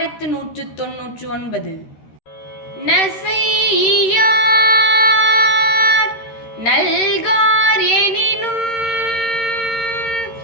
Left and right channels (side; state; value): right; late; 13 ms